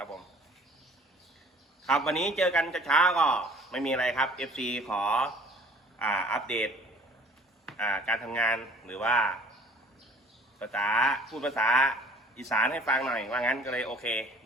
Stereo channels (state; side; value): normal; both; correlation 0.52